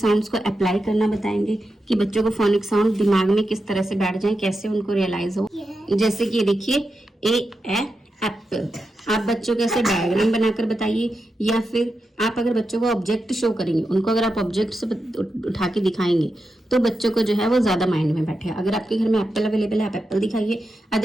को अप्लाई करना बताएंगे कि बच्चों को फोनिक साउंड दिमाग में किस तरह से बैठ जाए, कैसे उनको रियलाइज हो। जैसे कि ये देखिए ए एप्पल। आप बच्चों को ऐसे डायग्राम बनाकर बताइए, या फिर आप अगर बच्चों को ऑब्जेक्ट शो करेंगे, उनको अगर आप ऑब्जेक्ट से उठा के दिखाएंगे तो बच्चों को जो है वो ज्यादा माइंड में बैठे। अगर आपके घर में एप्पल अवेलेबल है आप एप्पल दिखाइए,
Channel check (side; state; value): both; normal; correlation 0.88